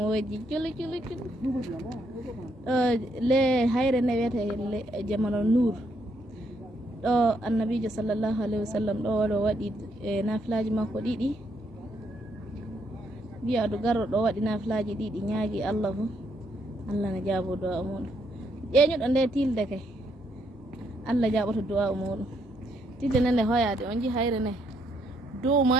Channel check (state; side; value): normal; both; correlation 0.74